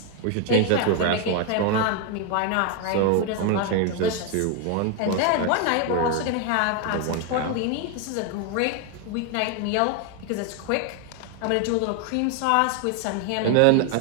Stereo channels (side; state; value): both; different; correlation 0.01